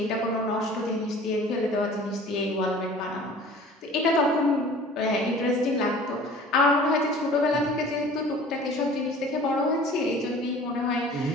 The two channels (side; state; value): both; normal; correlation 0.46